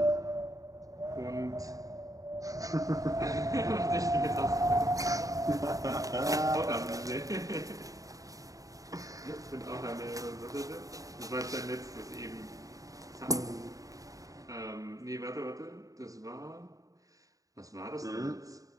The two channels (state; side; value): late; left; 0.17 ms